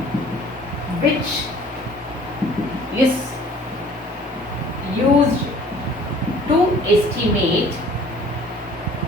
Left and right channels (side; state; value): both; normal; correlation 0.52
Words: which is used to estimate